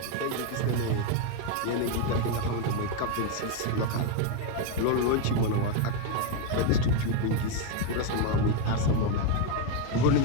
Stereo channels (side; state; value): both; different; correlation 0.01